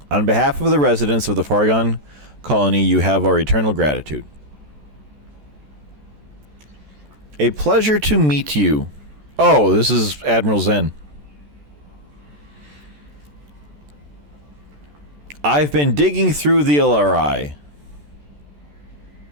On behalf of the residents of the Fargon colony, you have our eternal gratitude. A pleasure to meet you. Oh, this is Admiral Zen. I've been digging through the LRI.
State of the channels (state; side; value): late; left; 14 ms